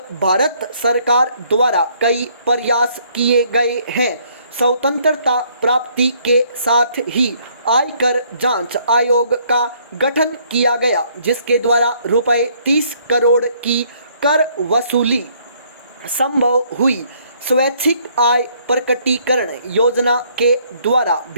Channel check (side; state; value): both; inverted; correlation -0.65